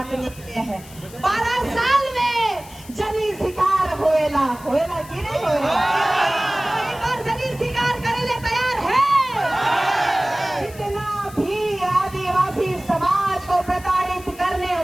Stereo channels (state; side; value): noise; left; hiss, 20 dB below the sound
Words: निकले हैं। 12 साल में जनी शिकार होएला कि नहीं होएला? एक बार जनी शिकार करे ले तैयार है? जितना भी आदिवासी समाज को प्रताड़ित करने